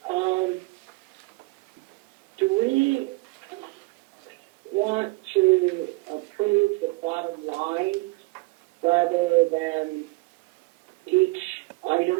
Do we want to approve the bottom line rather than each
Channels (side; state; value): left; quieter; 25.0 dB